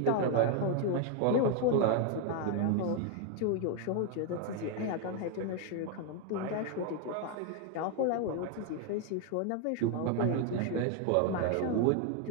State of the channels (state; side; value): different; both; correlation 0.01